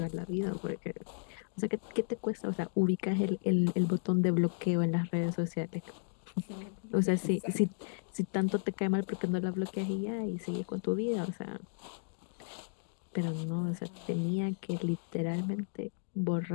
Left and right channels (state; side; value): silent; right; digital silence